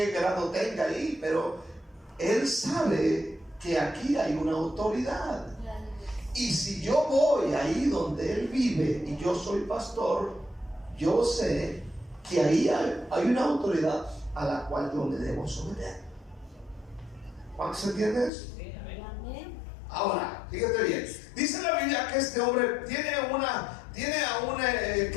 grado tenga ahí, pero él sabe que aquí hay una autoridad. Y si yo voy ahí donde él vive y yo soy pastor, yo sé que ahí hay una autoridad a la cual yo me debo someter. ¿Cuánto se entiende eso? Sí, amén. Ahora, fíjate bien. Dice la Biblia que este hombre tiene a un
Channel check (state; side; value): drops out; right; at 18.3 s